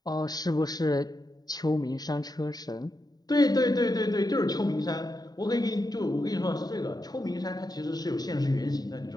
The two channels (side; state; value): right; late; 0.19 ms